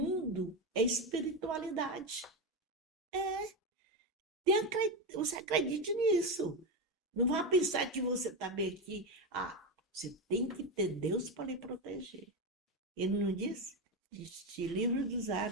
é espiritualidade. Você acredite nisso. Não vá pensar que você está bem aqui. Você tem que ter Deus para lhe proteger. Ele não disse? Te livro dos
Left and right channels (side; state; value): both; normal; correlation 0.13